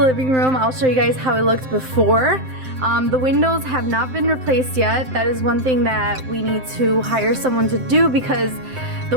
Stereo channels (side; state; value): left; late; 7.7 ms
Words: room. I'll show you guys how it looked before. The windows have not been replaced yet. That is one thing that we need to hire someone to do because the